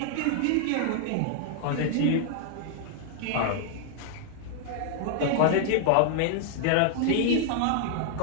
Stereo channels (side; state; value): both; different; correlation -0.01